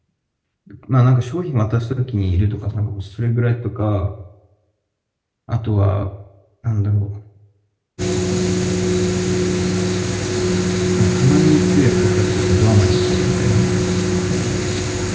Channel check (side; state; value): both; identical; correlation 1.00